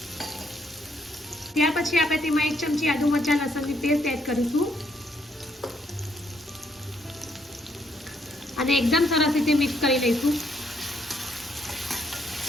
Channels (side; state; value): both; normal; correlation 0.72